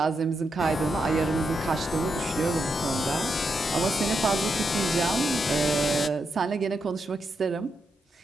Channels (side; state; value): both; normal; correlation 0.83